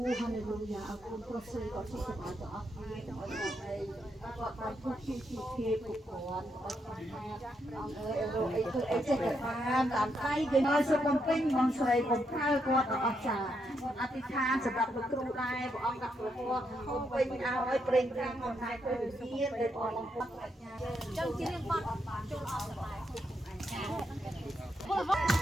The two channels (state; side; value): normal; both; correlation 0.80